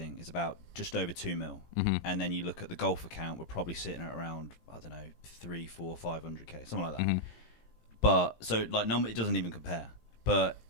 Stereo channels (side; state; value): right; late; 18 ms